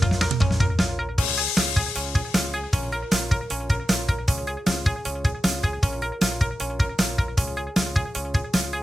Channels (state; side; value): normal; both; correlation 0.92